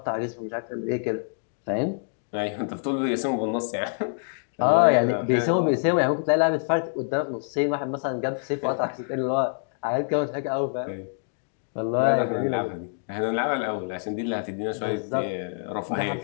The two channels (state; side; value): silent; right; digital silence